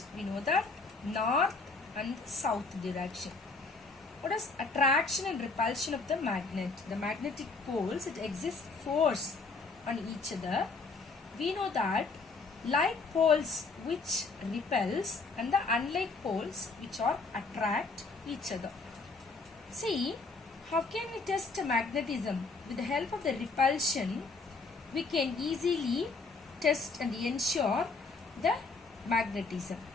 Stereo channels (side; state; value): right; quieter; 4.0 dB